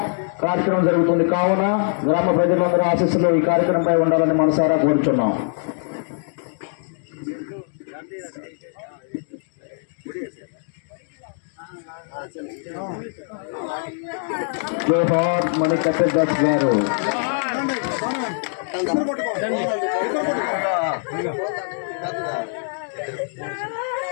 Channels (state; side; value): silent; right; digital silence